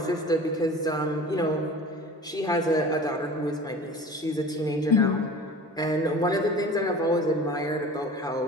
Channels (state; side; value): normal; both; correlation 0.39